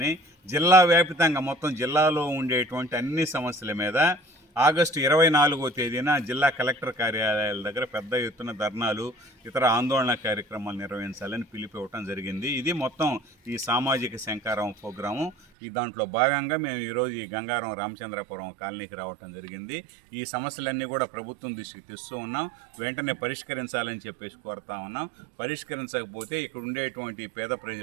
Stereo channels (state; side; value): drops out; left; at 15.4 s